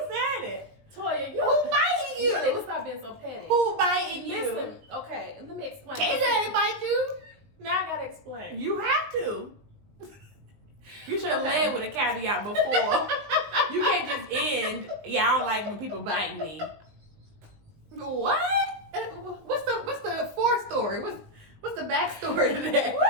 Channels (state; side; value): late; left; 20 ms